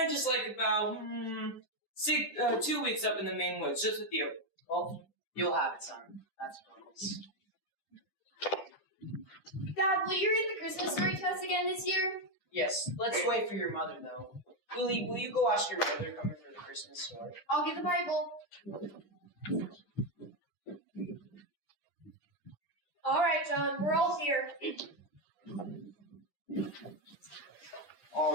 just like about 2 weeks up in the main woods, just with you. Well, you'll have it, son. That's a promise. Dad, will you read the Christmas story to us again this year? Yes, let's wait for your mother, though. Willie, will you go ask your mother to come in for the Christmas story? I'll get the Bible. All right, John, we're all here.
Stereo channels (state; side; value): late; right; 10 ms